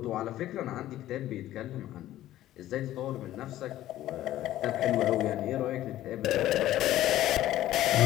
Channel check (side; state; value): right; quieter; 13.9 dB